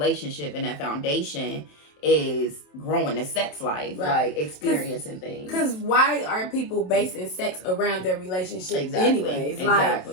and that foundation is growing the sex life, like experiencing things. Because why are people basing sex around their relationships anyways?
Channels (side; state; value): right; late; 27 ms